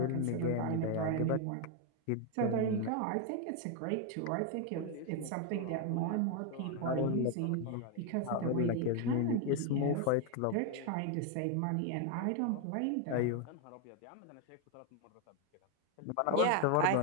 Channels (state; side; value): different; both; correlation 0.01